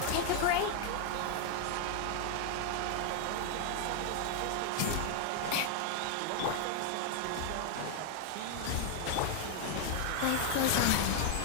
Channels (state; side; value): different; both; correlation 0.00